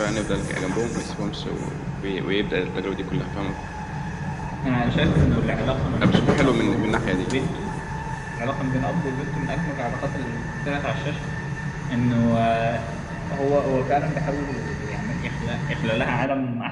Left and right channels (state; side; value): identical; both; correlation 1.00